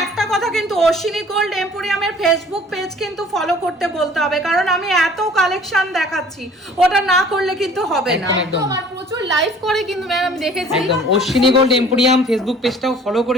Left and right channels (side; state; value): both; normal; correlation 0.51